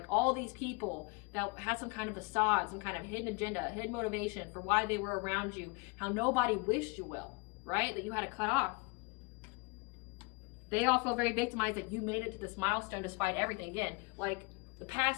all these people that had some kind of facade, some kind of hidden agenda, hidden motivation for why they were around you, how nobody wished you well, right? That you had to cut off. They all feel very victimized that you made it to this milestone despite everything. Again, like, the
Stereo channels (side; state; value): right; quieter; 29.7 dB